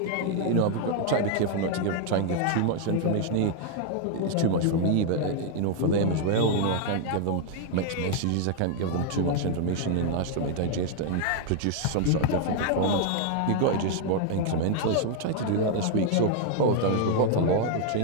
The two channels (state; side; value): different; both; correlation 0.00